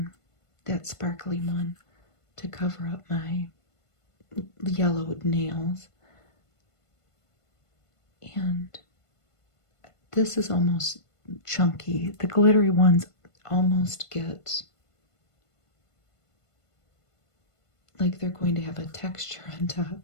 that sparkly one, to cover up my yellowed nails. And this is almost chunky. The glittery ones almost get like they're going to have a texture on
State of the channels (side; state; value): right; late; 1.5 ms